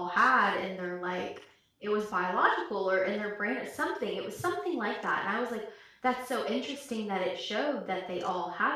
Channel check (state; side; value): identical; both; correlation 1.00